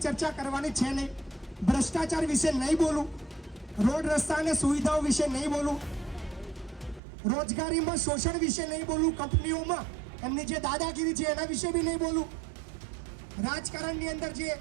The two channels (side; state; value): left; drops out; at 7.0 s